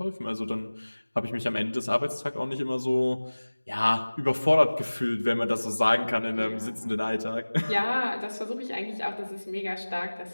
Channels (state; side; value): inverted; both; correlation -1.00